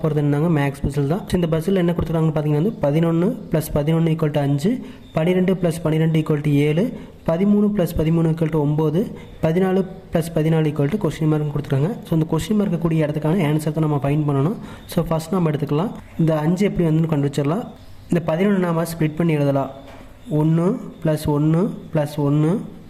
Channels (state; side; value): identical; both; correlation 1.00